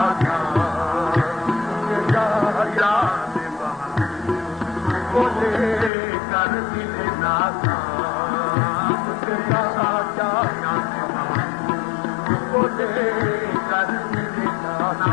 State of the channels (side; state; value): right; drops out; at 5.9 s